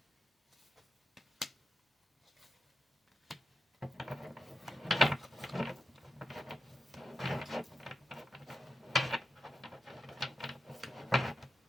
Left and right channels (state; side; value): normal; both; correlation 0.88